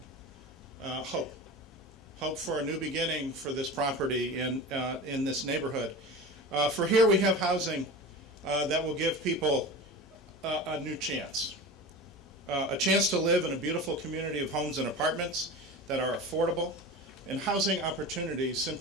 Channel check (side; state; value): both; normal; correlation 0.31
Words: hope. Hope for a new beginning for this property in this neighborhood. For here we have housing that will give people a new chance. A chance to live in a beautiful community of homes and apartments that are affordable, and housing opportunities